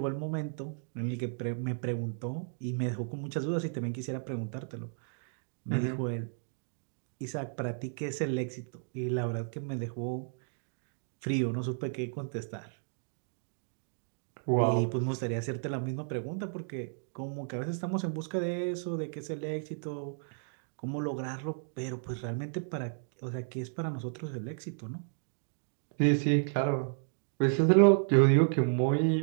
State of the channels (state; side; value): silent; left; digital silence